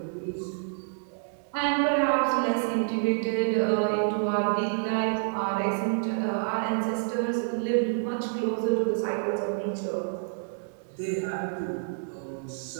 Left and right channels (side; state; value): left; silent; digital silence